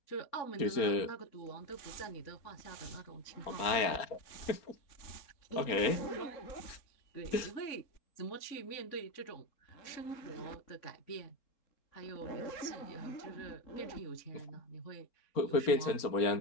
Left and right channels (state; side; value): late; right; 4.3 ms